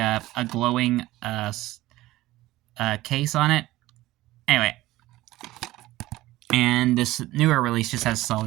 glowing case on it. Anyway, and this newer release just has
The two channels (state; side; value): quieter; left; 17.2 dB